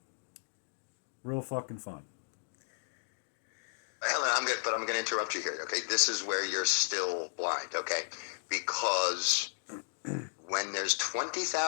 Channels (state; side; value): silent; right; digital silence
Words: Real fucking fun. Helen, I'm going to interrupt you here. Okay, this is where you're still blind. Okay, because when there's